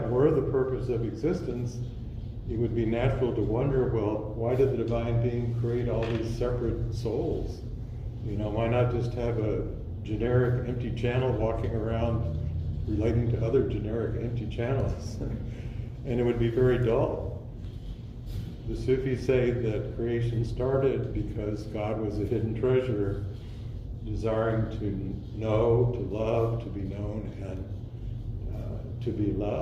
were the purpose of existence, it would be natural to wonder, well, why did the divine being create all these separate souls? You know, why not just have a generic empty channel walking around relating to other generic empty channels? And it would be very dull. The Sufis say that creation started because God was a hidden treasure, desiring to know, to love, to be known, and to be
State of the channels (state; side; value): identical; both; correlation 1.00